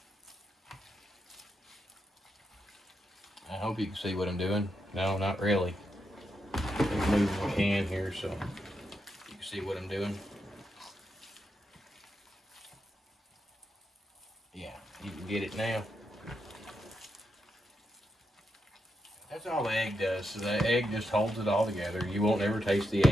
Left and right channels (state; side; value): normal; both; correlation 0.83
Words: I hope you can see what I'm doing. No, not really. Let me move my can here so you can see what I'm doing. Yeah, you can get it now. That's all the egg does. So the egg just holds it all together. You won't ever taste the